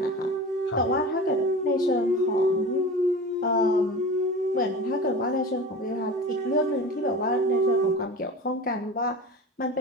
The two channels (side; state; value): both; normal; correlation 0.34